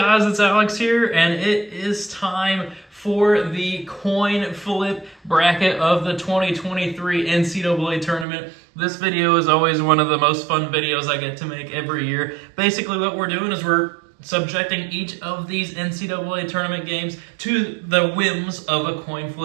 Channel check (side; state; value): left; drops out; at 8.2 s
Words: it's Alex here, and it is time for the coin flip bracket of the 2023 NCAA Tournament. This video is always one of the most fun videos I get to make every year. Basically what we're doing is we're subjecting each of these NCAA Tournament games to the whims of a coin